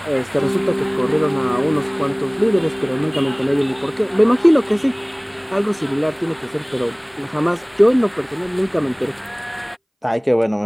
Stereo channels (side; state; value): both; identical; correlation 1.00